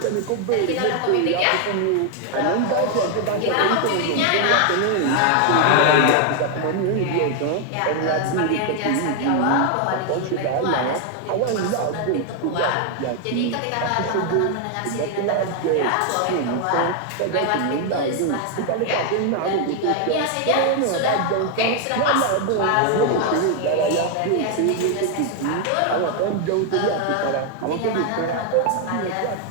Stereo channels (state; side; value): different; both; correlation 0.00